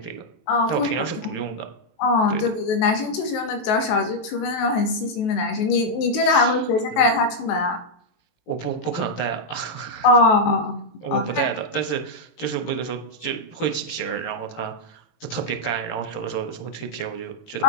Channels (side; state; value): right; late; 19 ms